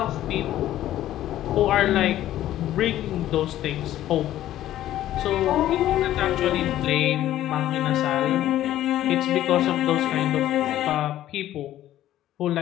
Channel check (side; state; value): right; quieter; 13.1 dB